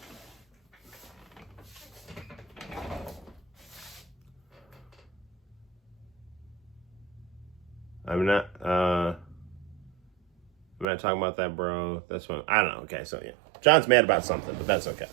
I'm not talking about that, bro. That's what I don't know. Okay, so yeah, John's mad about something, but that's okay.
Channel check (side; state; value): left; drops out; at 10.9 s